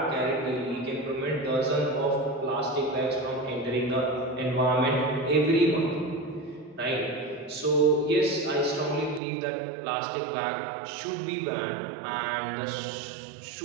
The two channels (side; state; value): left; drops out; at 9.2 s